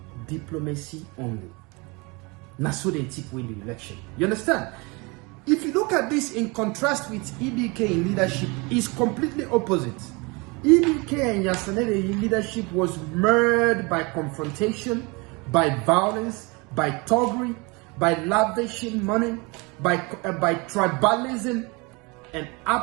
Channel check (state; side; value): quieter; left; 27.8 dB